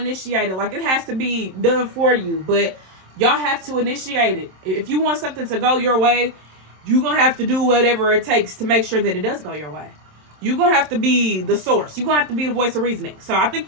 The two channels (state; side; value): late; left; 27 ms